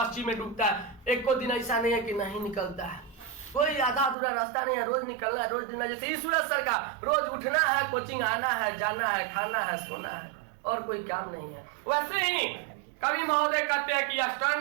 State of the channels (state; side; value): drops out; left; at 4.2 s